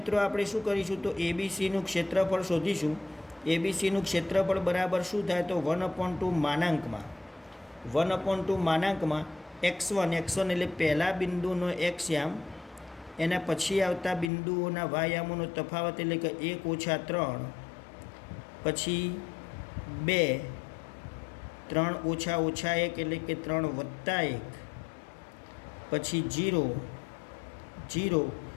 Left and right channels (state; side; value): drops out; right; at 14.3 s